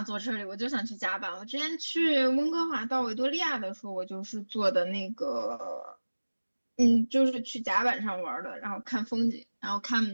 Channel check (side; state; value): both; inverted; correlation -1.00